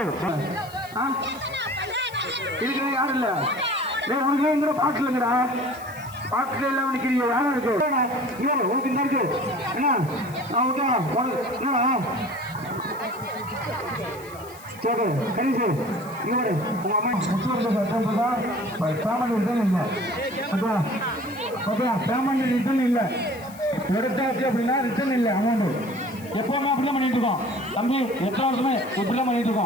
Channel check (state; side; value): noise; left; hiss, 21 dB below the sound